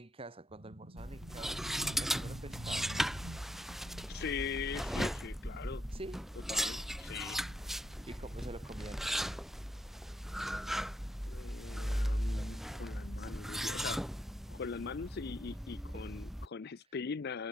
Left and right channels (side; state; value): both; normal; correlation 0.78